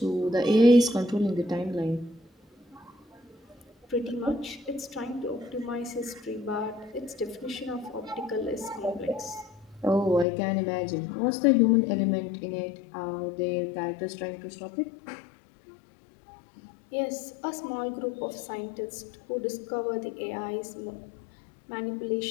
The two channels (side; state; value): right; drops out; at 10.2 s